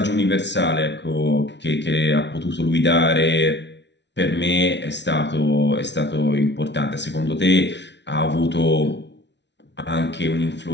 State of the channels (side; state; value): right; late; 0.51 ms